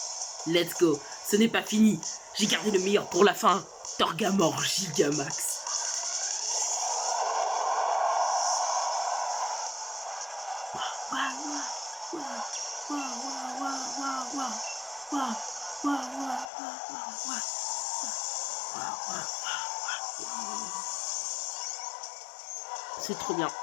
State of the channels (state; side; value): drops out; right; at 16.5 s